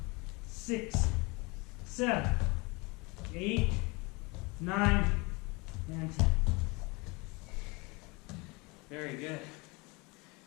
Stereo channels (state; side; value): quieter; right; 26.7 dB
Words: 6, 7, 8, 9, and 10. Very good.